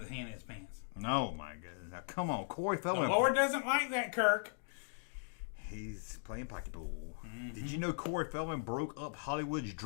his hand in his pants? No, my goodness. Now, come on, Corey The Feldman. Lord doesn't like that, Kirk. He's playing pocketball. Did you know Corey Feldman broke up Hollywood's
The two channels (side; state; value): right; silent; digital silence